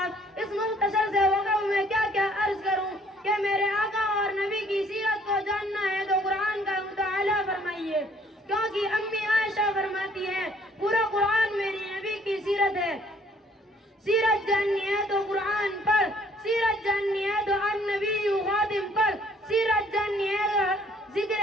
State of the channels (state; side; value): normal; both; correlation 0.60